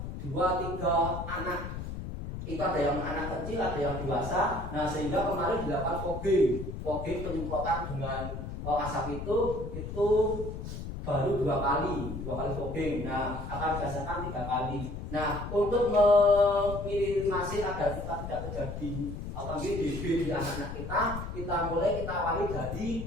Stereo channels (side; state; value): left; noise; rumble, 7 dB below the sound